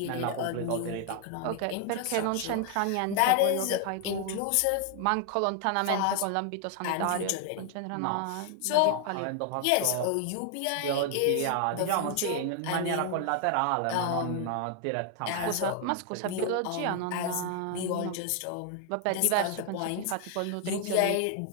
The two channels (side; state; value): both; different; correlation 0.00